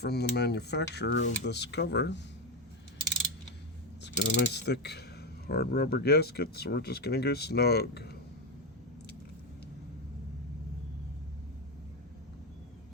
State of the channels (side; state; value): both; normal; correlation 0.10